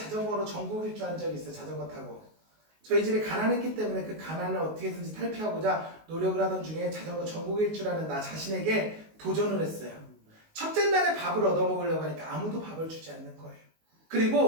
전국 일주 한 적이 있어요. 자전거 타고. 저희 집이 가난했기 때문에 그 가난을 어떻게든지 탈피하고자 노력을 하던 중에 자전거 전국 일주라는 나 자신에게 도전을 했어요. 첫째 날에 밥을 얻어먹으려고 하니까 아무도 밥을 주지 않는 거예요.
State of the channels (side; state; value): left; late; 19 ms